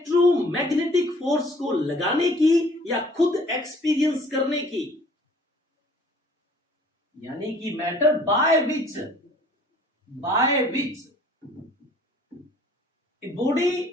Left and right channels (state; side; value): normal; both; correlation 0.54